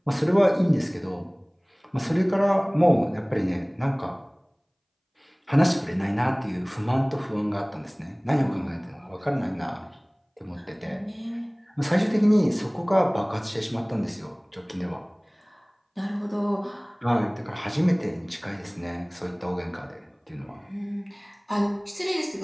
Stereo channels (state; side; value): identical; both; correlation 1.00